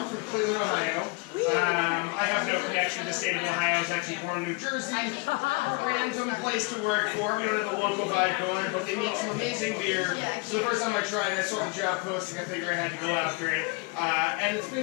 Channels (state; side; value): quieter; right; 28.5 dB